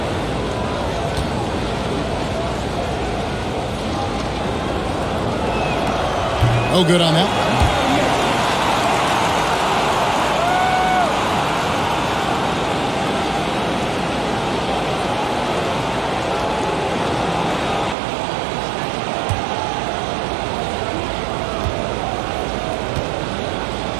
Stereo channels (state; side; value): drops out; left; at 17.9 s